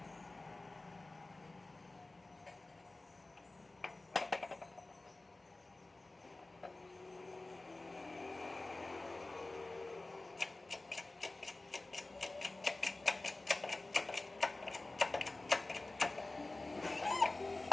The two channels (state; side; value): quieter; right; 3.0 dB